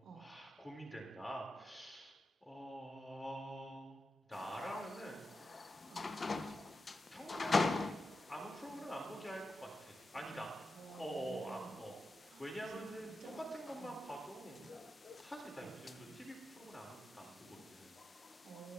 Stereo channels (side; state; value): both; normal; correlation 0.90